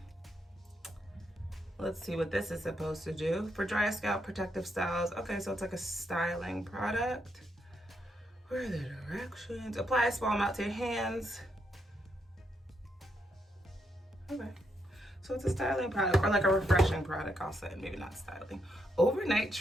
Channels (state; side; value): normal; both; correlation 0.79